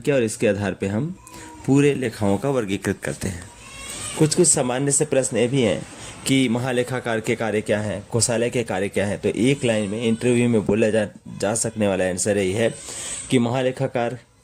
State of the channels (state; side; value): identical; both; correlation 1.00